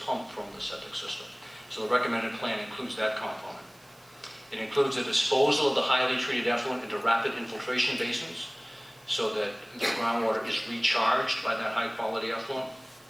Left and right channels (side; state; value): right; noise; hiss, 28 dB below the sound